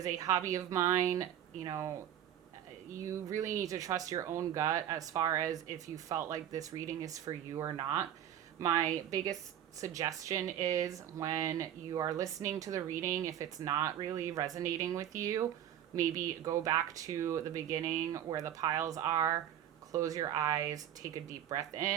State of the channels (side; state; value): left; quieter; 10.7 dB